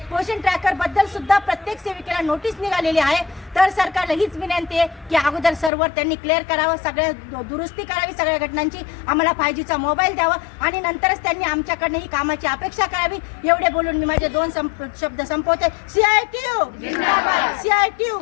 पोषण ट्रॅकर बद्दल सुद्धा प्रत्येक सेविकेला नोटीस निघालेली आहे। तर सरकारला हीच विनंती आहे की अगोदर सर्व्हर त्यांनी क्लिअर करावं, सगळ्या दुरुस्ती करावी सगळ्या घटनांची, आम्हाला 5Gचा मोबाईल द्यावा आणि नंतरच त्यांनी आमच्याकडनं ही कामाची अपेक्षा करावी। एवढे बोलून मी माझे 2 शब्द संपवते। CITU जिंदाबाद, CITU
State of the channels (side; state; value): right; drops out; at 5.7 s